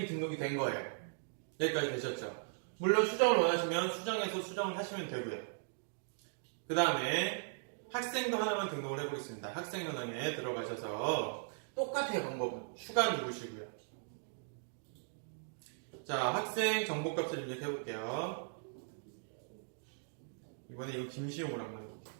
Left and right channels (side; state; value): left; silent; digital silence